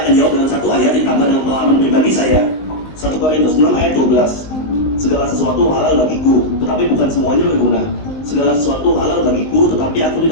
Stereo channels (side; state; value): right; late; 19 ms